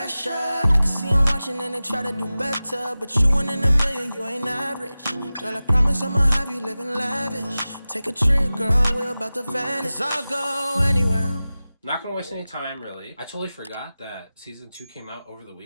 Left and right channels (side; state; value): both; inverted; correlation -0.96